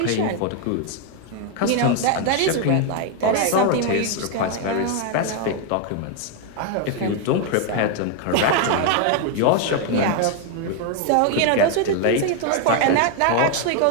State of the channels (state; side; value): different; both; correlation 0.01